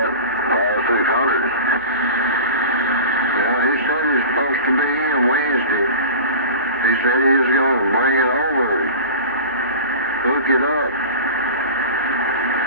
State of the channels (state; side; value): inverted; both; correlation -0.32